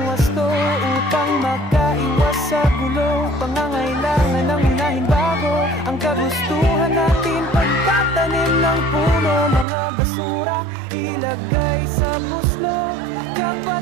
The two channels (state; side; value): drops out; left; at 9.7 s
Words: wasto upang makaiwas sa gulo. Pangangailangan ng unahin bago ang kagustuhan natin. Pagtatanim ng puno, mga basura ilagay sa buslo.